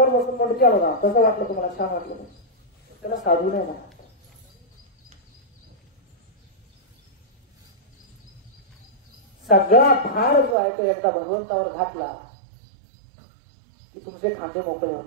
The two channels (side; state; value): left; drops out; at 10.6 s